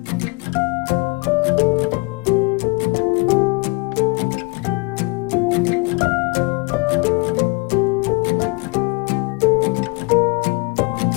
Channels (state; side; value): quieter; right; 29.0 dB